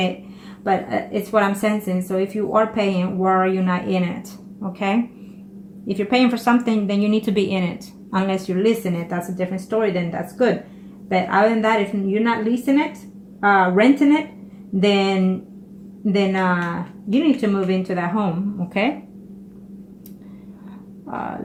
it, but it's what I'm sensing. So if you are paying, why are you not in it, okay? If you're paying for something, then you need to be in it. Unless you're leasing it, that's a different story, then that's good. But other than that, if you're not leasing it, renting it, then you need to move into that home, okay?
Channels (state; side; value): identical; both; correlation 1.00